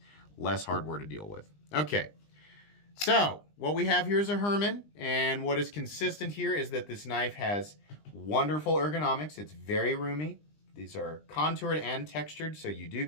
less hardware to deal with. Okay. So what we have here is a Herman, and what is consistent here is that this knife has wonderful ergonomics. It's very roomy. These are contoured and textured, so you do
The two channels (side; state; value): right; late; 20 ms